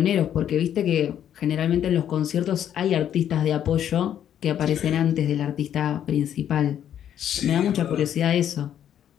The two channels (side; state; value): right; quieter; 10.0 dB